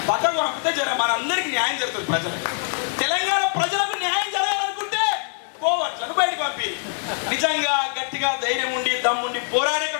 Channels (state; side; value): silent; right; digital silence